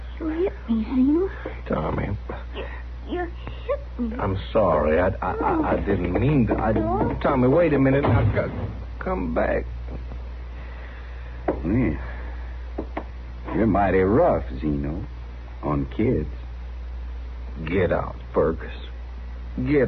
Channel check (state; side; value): identical; both; correlation 1.00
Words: hit me, Zeno. Tommy, You hit me. I'm sorry. I didn't mean to. Tommy, wait a minute. Now, come back. Yeah. You're mighty rough, Zeno, on kids. Get out, Fergus. Get